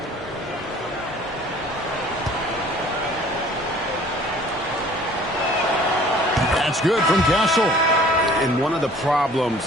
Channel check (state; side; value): normal; both; correlation 0.52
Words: That's good from Castle. And one of the